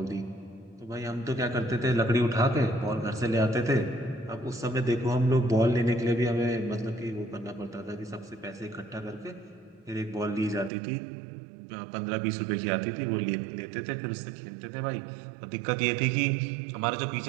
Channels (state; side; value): drops out; left; at 10.7 s